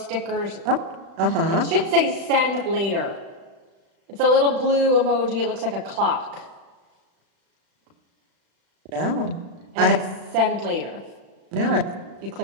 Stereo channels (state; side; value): late; left; 35 ms